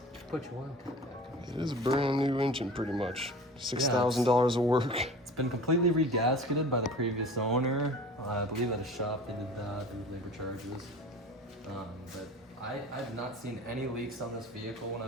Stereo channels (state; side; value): normal; both; correlation 0.39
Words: put your oil tank back. It is a brand new engine, pretty much. $6,000 of work. It's been completely regasketed by the previous owner. I believe at a shop they did that, they did labor charges. But I've not seen any leaks on this vehicle when